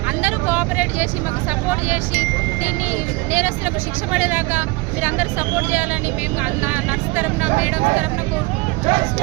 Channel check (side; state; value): left; quieter; 24.6 dB